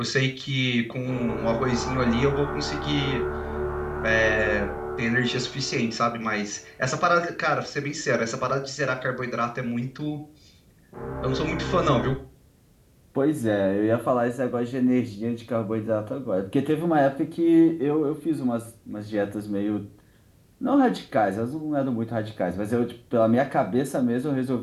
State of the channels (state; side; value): identical; both; correlation 1.00